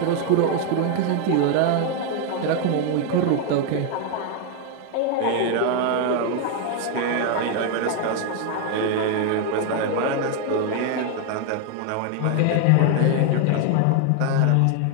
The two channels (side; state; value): both; different; correlation 0.01